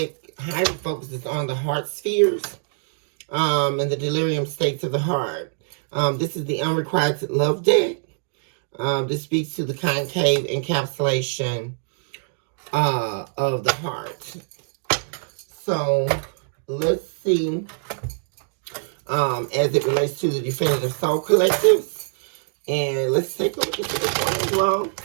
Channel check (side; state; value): left; silent; digital silence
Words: highly focuses on the heart spheres and the delirium states of the heart. This is the unrequited love deck. This speaks to the concave encapsulation of the heart. So let's see, as it relates to the definitive soul collectives. And let's take a look at this one as well.